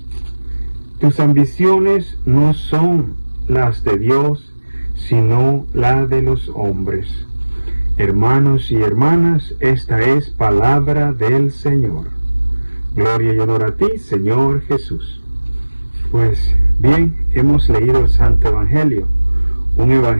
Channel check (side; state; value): both; inverted; correlation -1.00